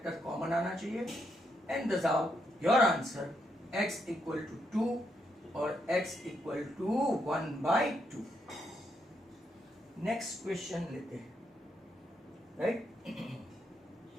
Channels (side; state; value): both; normal; correlation 0.78